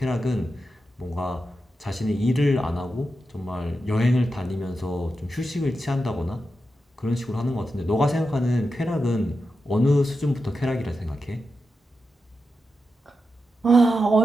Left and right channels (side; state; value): both; normal; correlation 0.89